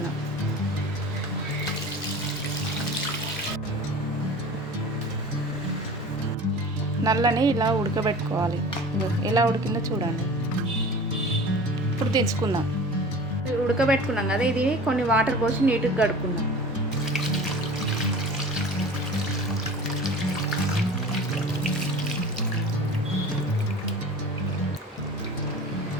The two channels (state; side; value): normal; both; correlation 0.39